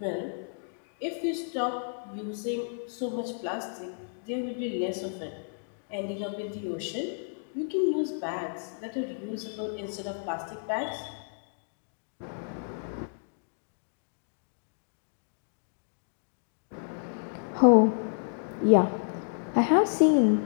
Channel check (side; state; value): right; silent; digital silence